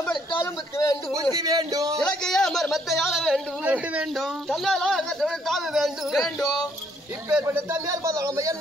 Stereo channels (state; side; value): normal; both; correlation 0.67